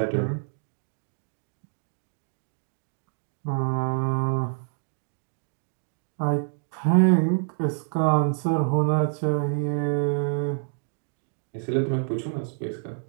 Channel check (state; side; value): silent; left; digital silence